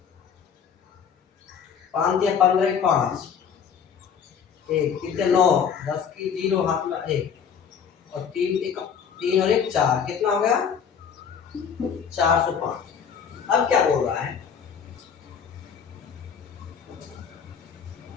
5 या 15 5 एक कितने 9 10 की 0 हाथ में 1 और 3 और 1 4 कितना हो गया 405। अब क्या बोल रहा है,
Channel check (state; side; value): quieter; right; 7.2 dB